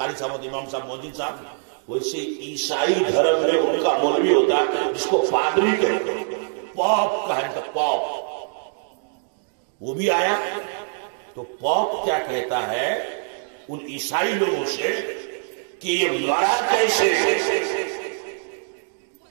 صاحب ہوتے ہیں، امام صاحب، مؤذن صاحب، ویسے عیسائی دھرم میں ان کا مولوی ہوتا ہے جس کو پادری کہتے ہیں، پاپ کہتے ہیں، پاپ. وہ بھی آیا تو پاپ کیا کہتا ہے ان عیسائی لوگوں سے کہ یہ مرا کیسے؟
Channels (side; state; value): left; silent; digital silence